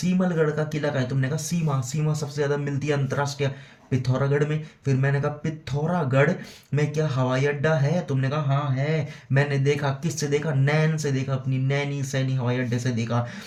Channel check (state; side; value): identical; both; correlation 1.00